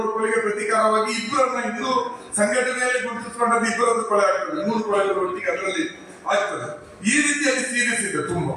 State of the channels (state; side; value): identical; both; correlation 1.00